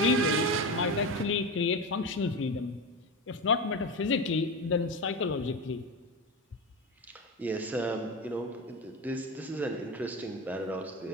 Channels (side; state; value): both; normal; correlation 0.21